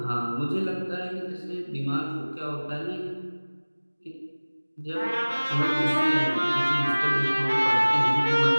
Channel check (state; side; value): inverted; both; correlation -1.00